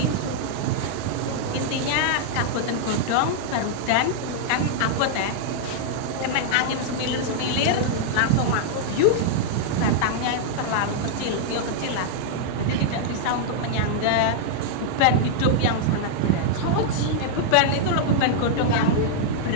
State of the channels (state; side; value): different; both; correlation -0.01